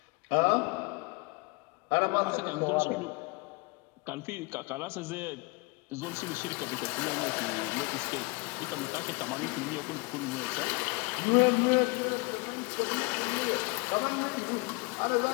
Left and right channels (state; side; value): quieter; right; 28.2 dB